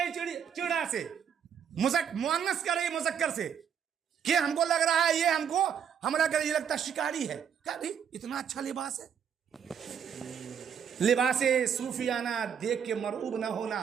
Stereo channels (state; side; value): quieter; left; 8.0 dB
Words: چڑا سے, مؤنث کہہ رہی مذکر سے, کہ ہم کو لگ رہا ہے یہ ہم کو حملہ کرے, یہ لگتا ہے شکاری ہے. کہا بھائی اتنا اچھا لباس ہے. لباس صوفیانہ دیکھ کے مرعوب نہ ہونا,